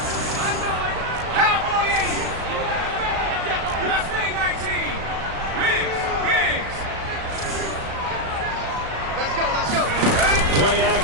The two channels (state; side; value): late; left; 36 ms